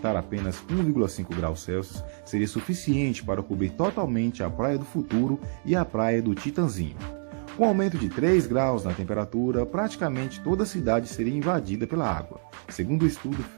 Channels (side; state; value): left; silent; 60 dB below the other